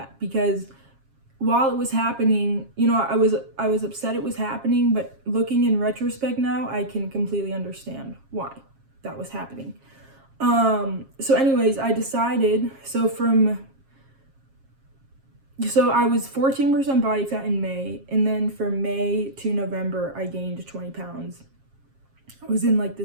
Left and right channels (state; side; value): late; left; 7.4 ms